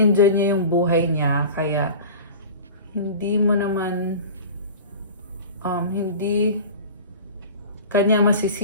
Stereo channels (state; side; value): inverted; both; correlation -0.36